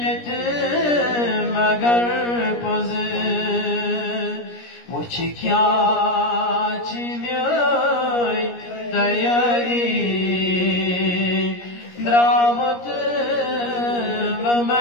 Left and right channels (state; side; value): late; right; 17 ms